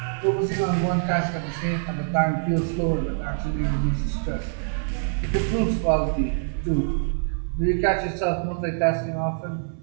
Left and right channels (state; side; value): silent; left; 56 dB below the other